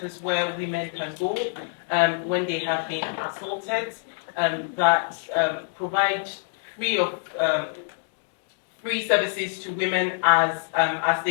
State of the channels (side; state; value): right; silent; digital silence